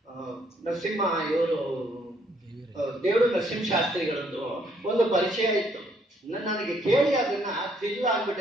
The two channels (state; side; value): normal; both; correlation 0.68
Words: ನರಸಿಂಹ, ಇವರು ದೇವರು ನರಸಿಂಹಶಾಸ್ತ್ರಿಗಳದ್ದು ಒಂದು ಪರಿಚಯ ಇತ್ತು. ನನಗೆ ಕೇಳಿ ಅದನ್ನ ಥ್ರಿಲ್